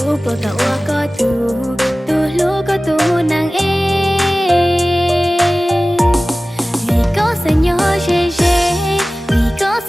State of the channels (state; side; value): normal; both; correlation 0.97